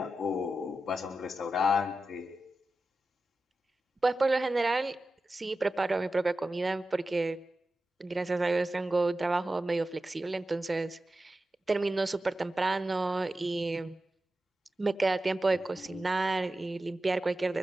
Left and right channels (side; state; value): both; normal; correlation 0.93